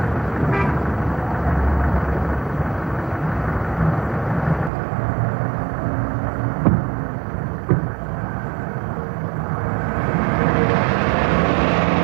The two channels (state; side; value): drops out; left; at 4.7 s